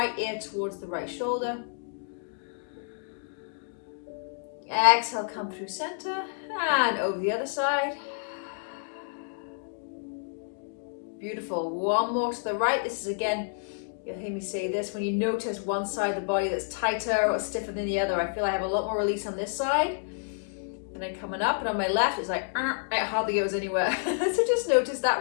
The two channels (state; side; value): silent; right; digital silence